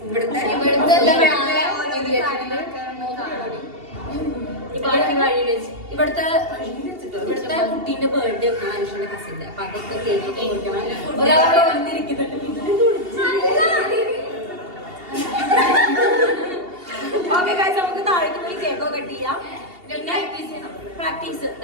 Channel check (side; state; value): left; late; 2.8 ms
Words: ഇവിടുത്തെ കുട്ടീന്റെ ബർത്ത്ഡേ ഒക്കെ മനുഷ്യന്റെ കസിന്റെ. അപ്പൊ അതൊക്കെ കേക്ക് കൊടുക്കണം. ഒരാളോട് വന്നിരിക്കുന്നുണ്ട്. ഓക്കെ ഗൈസ്, നമുക്ക് താഴേക്ക് പോയി കേക്കോ കട്ട് ചെയ്യാം. പിന്നെ പ്രാക്ടീസ്